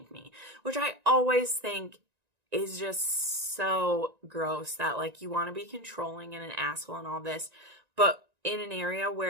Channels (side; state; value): left; late; 1.9 ms